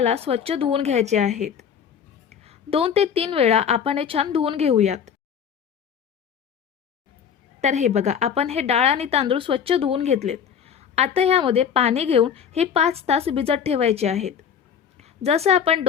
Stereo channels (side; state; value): right; quieter; 7.8 dB